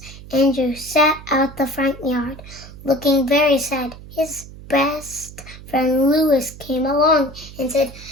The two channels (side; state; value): right; noise; hum, 16 dB below the sound